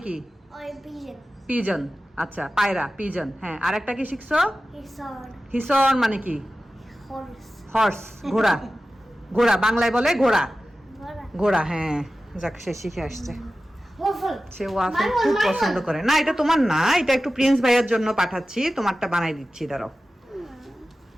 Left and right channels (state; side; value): normal; both; correlation 0.95